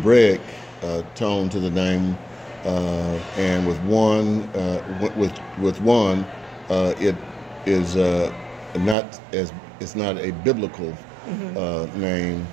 tone to the name, and with one, it is it's not a biblical name.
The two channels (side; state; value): left; drops out; at 9.0 s